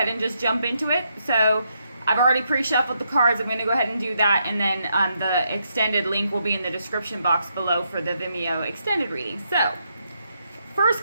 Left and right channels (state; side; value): inverted; both; correlation -0.79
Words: and just jump into it. So I've already pre-shuffled the cards. I'm going to go ahead and do that, and then the extended link will be in the description box below for the Vimeo extended reading. So first